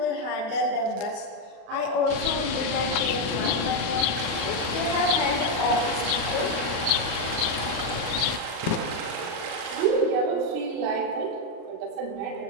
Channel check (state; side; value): late; left; 37 ms